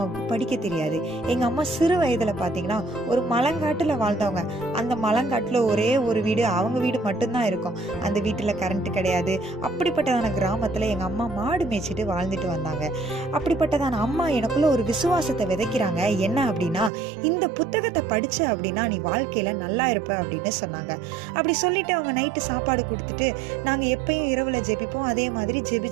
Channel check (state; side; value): drops out; left; at 16.9 s